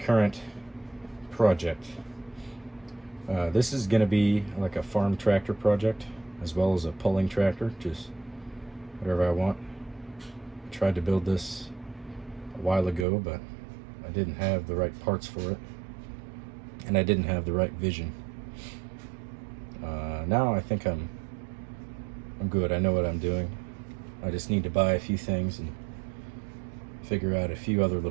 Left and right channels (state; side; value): drops out; left; at 13.1 s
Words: project. This is going to be like a farm tractor project as well as a pulling tractor, just whatever I want. I tried to build this a while ago, but I didn't have the right parts for it and I didn't have the right vision. Now I think I'm good. I know what I'm doing. I just need to buy a few things and figure out a few other